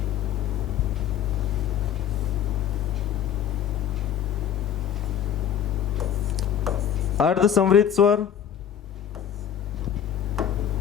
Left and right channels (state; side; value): quieter; right; 9.3 dB